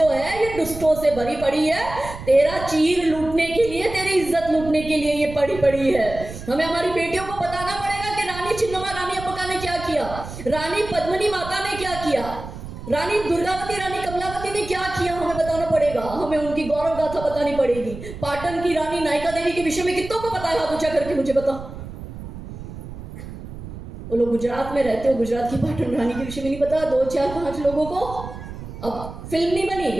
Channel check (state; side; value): noise; right; rumble, 12 dB below the sound